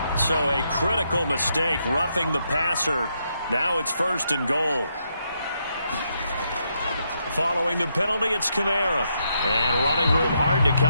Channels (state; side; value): inverted; both; correlation -0.79